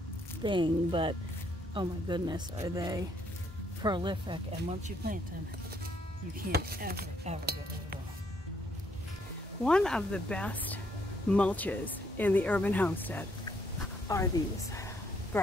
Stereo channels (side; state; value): both; normal; correlation 0.71